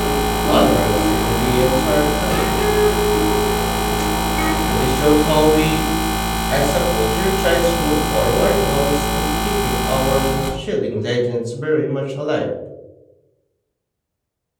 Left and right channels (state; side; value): identical; both; correlation 1.00